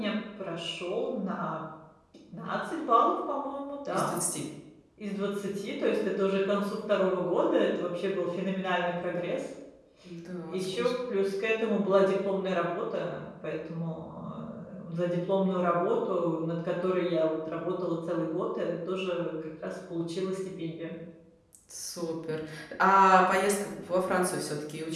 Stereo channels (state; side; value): identical; both; correlation 1.00